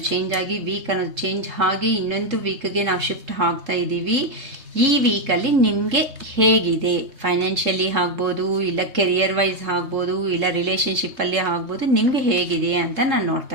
ಚೇಂಜ್ ಆಗಿ ವೀಕ್ ಅನ್ನೋದು ಚೇಂಜ್ ಆಗಿ ಇನ್ನೊಂದು ವೀಕ್ಗೆ ನಾವು ಶಿಫ್ಟ್ ಆಗ್ತಾ ಇದ್ದೀವಿ. ಈ ವೀಕಲ್ಲಿ ನಿಮಗೆ ಹೇಗಿದೆ? ಫೈನಾನ್ಷಿಯಲಿ ಆಗ್ಬೋದು, ಇಲ್ಲ ಕೆರಿಯರ್ ವೈಸ್ ಆಗ್ಬೋದು, ಇಲ್ಲ ರಿಲೇಷನ್ಶಿಪ್ಪಲ್ಲಿ ಆಗ್ಬೋದು. ನಿಮಗೆ ಹೇಗಿದೆ ಅಂತ ನಾನು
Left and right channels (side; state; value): left; late; 3.7 ms